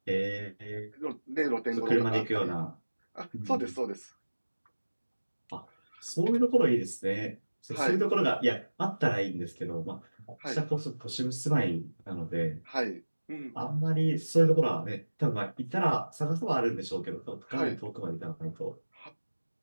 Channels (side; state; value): both; inverted; correlation -1.00